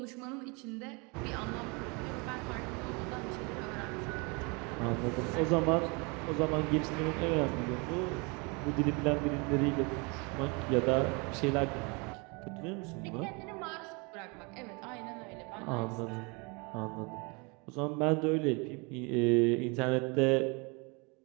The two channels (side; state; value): left; quieter; 30.0 dB